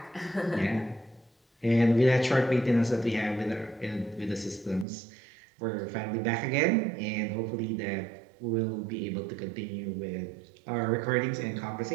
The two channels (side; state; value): left; drops out; at 4.9 s